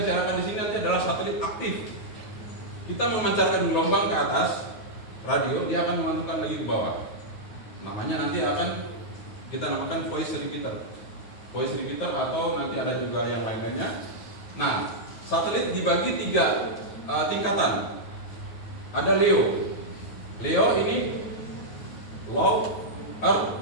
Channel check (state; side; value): late; right; 9.4 ms